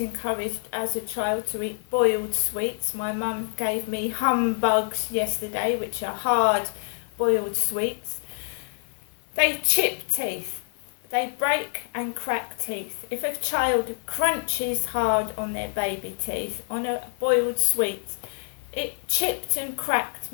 as a child to eat boiled sweets. My mum gave me humbugs yesterday, which are hard boiled sweets. They chip teeth. They break and crack teeth. If a child crunches hard on their baby teeth on a boiled sweet, it chipped and cracked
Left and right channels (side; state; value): right; silent; 61 dB below the other